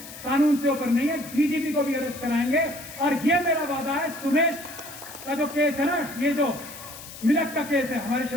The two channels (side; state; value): left; noise; hiss, 14 dB below the sound